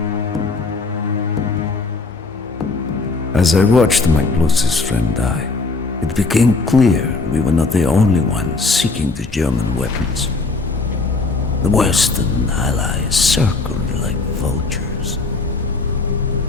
As I watched my closest friend die, it became clear we were not the only ones seeking the German weapons. The Western Allies circled like vultures.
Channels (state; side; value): quieter; right; 3.8 dB